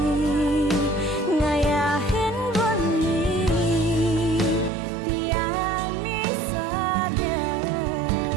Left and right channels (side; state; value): left; drops out; at 4.7 s